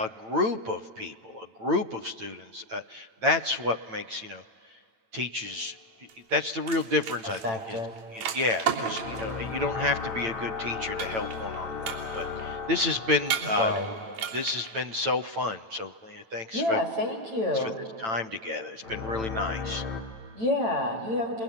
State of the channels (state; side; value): late; left; 9.0 ms